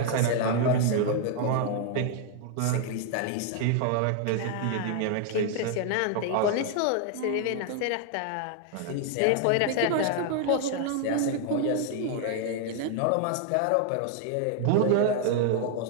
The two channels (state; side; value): different; both; correlation 0.00